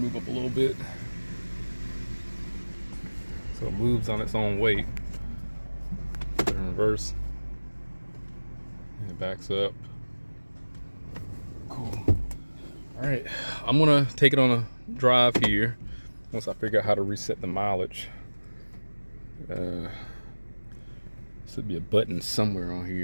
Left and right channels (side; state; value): both; inverted; correlation -1.00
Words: up a little bit. So it moves on its own weight. Put it in reverse. And it backs up. Cool. All right, I'm gonna take it on a drive here once I figure out how to reset the mileage. Should be a button somewhere on